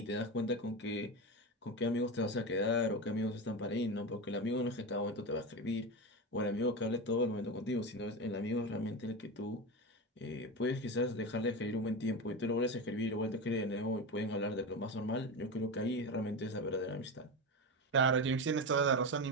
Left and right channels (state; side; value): normal; both; correlation 0.20